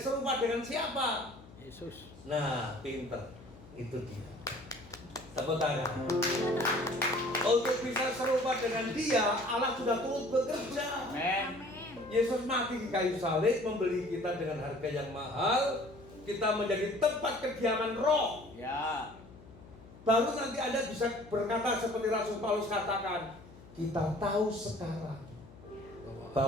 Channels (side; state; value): left; noise; hum, 20 dB below the sound